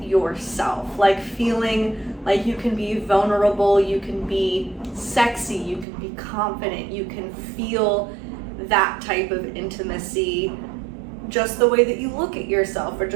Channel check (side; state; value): left; drops out; at 5.9 s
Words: yourself, feeling like you can be vulnerable, you can be sexy, you can be confident, you can feel that type of intimacy just the way that you look at yourself or